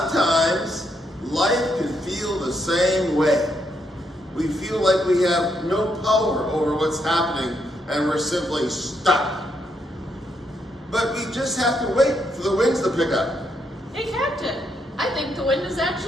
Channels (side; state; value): both; normal; correlation 0.77